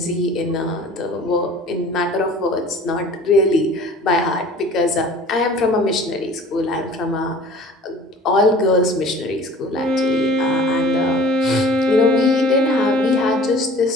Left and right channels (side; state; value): both; normal; correlation 0.46